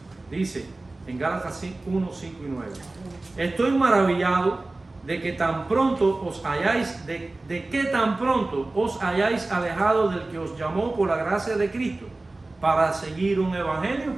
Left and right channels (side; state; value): left; quieter; 3.1 dB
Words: Dice en Gálatas 1, 5 y 9: estoy maravillado de que tan pronto os hayáis, de que tan pronto os hayáis alejado del que os llamó por la gracia de Cristo para seguir un evangelio